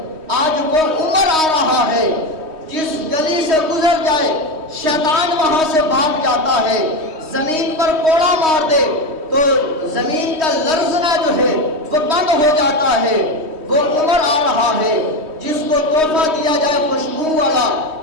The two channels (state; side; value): late; left; 3.2 ms